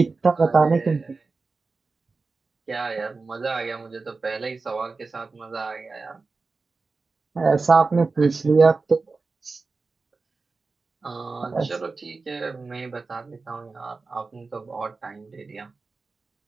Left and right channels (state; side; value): quieter; left; 4.0 dB